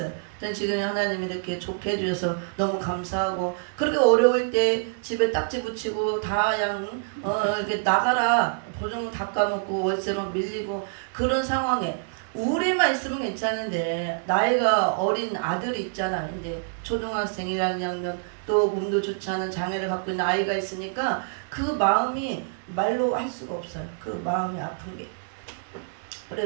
전 지금 하나님이 이렇게 좋게 해주셔서 너무 감사하고, 그렇게 어려울 때 집에 딱지 붙이고 다 그냥 이렇게 나가라 보증금 다 까먹고 월세만 밀리고 그런 상황에 우리만 있으면 괜찮은데, 나이가 어린 아들이 있잖아. 이제 초등학생이라면 또 몸도 좋지 않은 장애를 갖고 있는 아이가 있으니까 그 마음이 말로 할 수가 없어요. 그 마음이 아픈 게.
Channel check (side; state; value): left; silent; digital silence